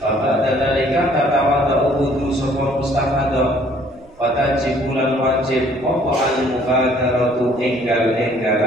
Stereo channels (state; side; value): noise; right; rumble, 28 dB below the sound